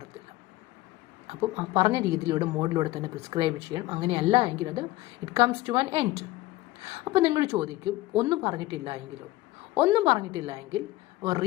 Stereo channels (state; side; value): quieter; right; 18.1 dB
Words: അപ്പം ആ പറഞ്ഞ രീതിയിലൂടെ മോഡിലൂടെ തന്നെ പ്രിസ്ക്രൈബ് ചെയ്യണം. അങ്ങനെയല്ല എങ്കിൽ അത് it comes to an end. അപ്പോൾ നിങ്ങൾ ചോദിക്കും, ഒന്നും പറഞ്ഞിട്ടില്ല എങ്കിൽ